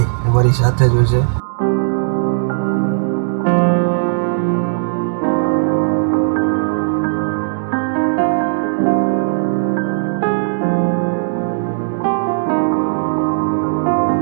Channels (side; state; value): left; silent; digital silence